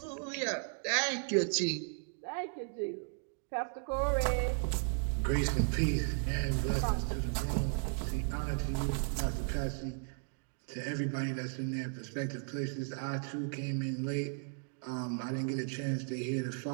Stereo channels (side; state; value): left; silent; 54 dB below the other